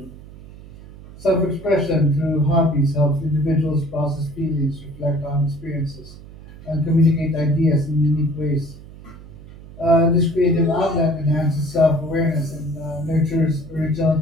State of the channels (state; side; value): noise; right; hum, 18 dB below the sound